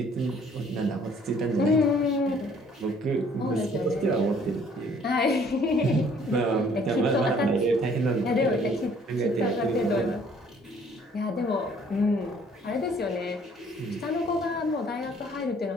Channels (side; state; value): both; normal; correlation 0.59